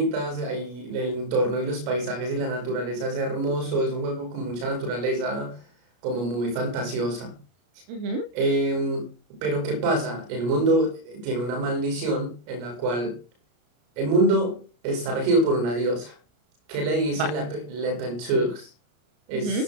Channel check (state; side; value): late; left; 33 ms